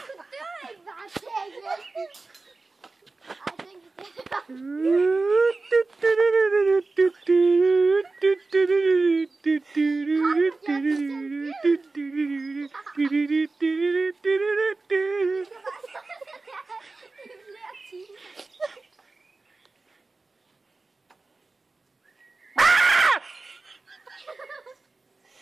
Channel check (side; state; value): left; quieter; 3.6 dB